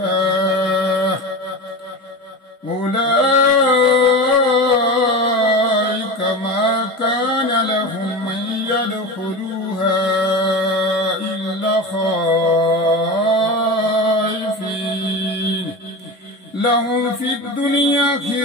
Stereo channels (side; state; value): both; normal; correlation 0.27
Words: أولئك ما كان لهم أن يدخلوها إلا خائفين لهم في الدنيا